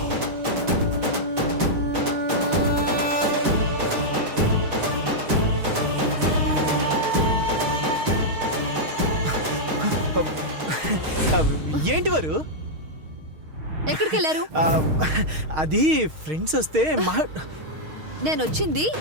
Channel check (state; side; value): late; left; 6.4 ms